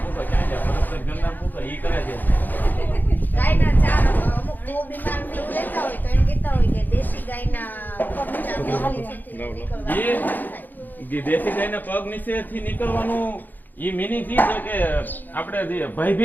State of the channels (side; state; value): right; late; 0.087 ms